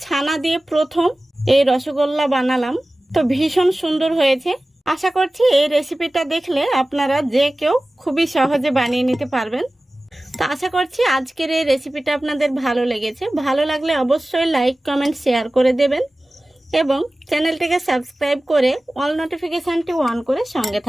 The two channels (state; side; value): normal; both; correlation 0.97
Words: ছানা দিয়ে প্রথম এই রসগোল্লা বানালাম, তো ভীষণ সুন্দর হয়েছে। আশা করছি এই রেসিপিটা দেখলে আপনারা যে কেউ খুবই সহজে বানিয়ে নিতে পারবেন। তো আশা করছি আজকের এই রেসিপিটা আপনাদের ভালো লেগেছে। ভালো লাগলে অবশ্যই লাইক, কমেন্ট, শেয়ার করে দেবেন এবং চ্যানেলটিকে সাবস্ক্রাইব করে অল নোটিফিকেশানটি অন করে সঙ্গে